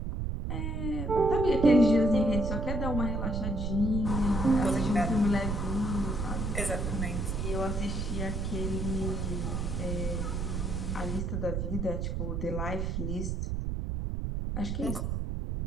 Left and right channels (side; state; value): right; noise; rumble, 2 dB below the sound